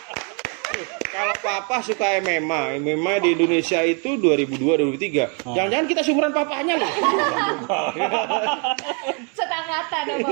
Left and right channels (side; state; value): left; quieter; 37.9 dB